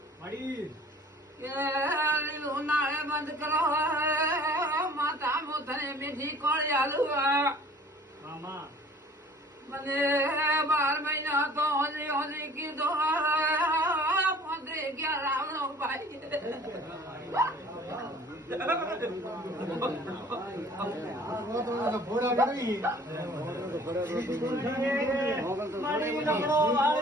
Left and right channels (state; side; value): normal; both; correlation 0.50